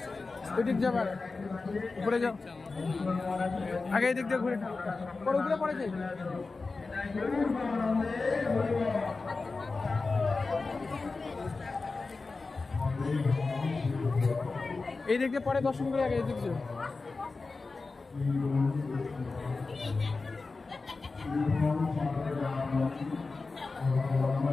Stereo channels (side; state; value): right; quieter; 3.9 dB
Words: ওইদিক যাবার উপরে যাও, আগে এই দিক দিয়ে ঘুরে পরে উপরে পড়ে যাই। এই দিক দিয়ে পরে দর্শন করে আগে এই দিক যাও।